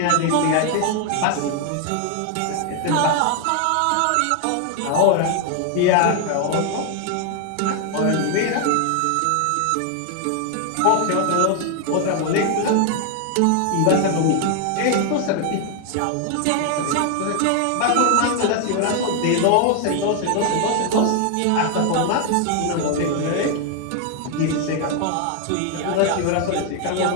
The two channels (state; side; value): different; both; correlation 0.00